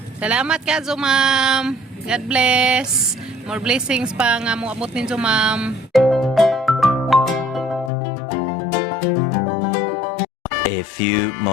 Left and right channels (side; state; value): right; drops out; at 7.9 s